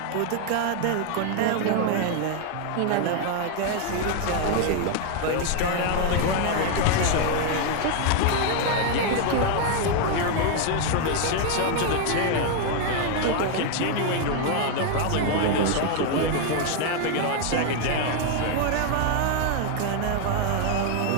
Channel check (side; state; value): both; different; correlation 0.01